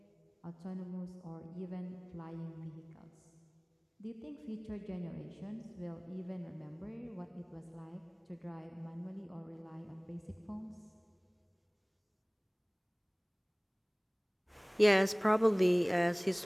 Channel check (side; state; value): both; identical; correlation 1.00